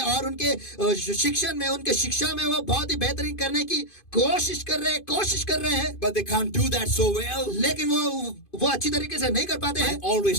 और उनके शिक्षण में, उनके शिक्षा में वो बहुत ही बेहतरीन करने की कोशिश कर रहे हैं, But they can't do that so well. लेकिन वो अच्छी तरीके से नहीं कर पाते I हैं.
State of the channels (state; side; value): late; right; 2.5 ms